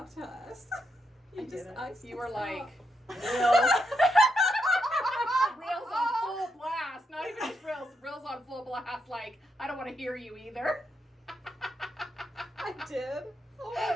to us. I didn't. You were like Reels. reels on full blast. Not even just reels. Reels on full blast. Like, I don't want to hear you either. I did. Oh my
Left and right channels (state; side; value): normal; both; correlation 0.82